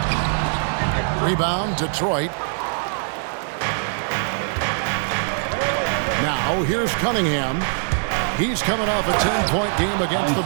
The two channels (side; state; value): left; silent; digital silence